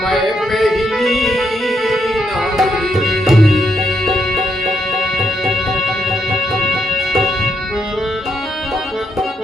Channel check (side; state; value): both; normal; correlation 0.78